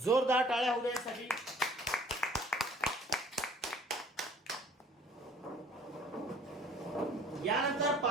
जोरदार टाळ्या होऊ द्यासाठी। यानंतर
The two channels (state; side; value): normal; both; correlation 0.53